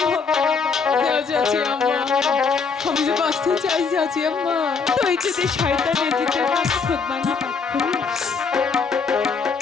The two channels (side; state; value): right; quieter; 5.3 dB